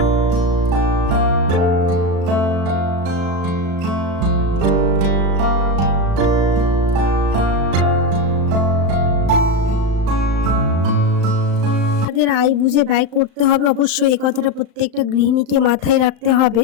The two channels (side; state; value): left; late; 35 ms